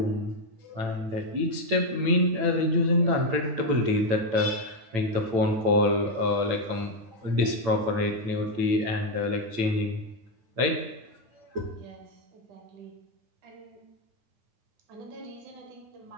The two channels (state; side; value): late; left; 8.9 ms